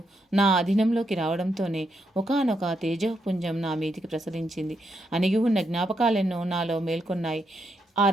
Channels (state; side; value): normal; both; correlation 0.80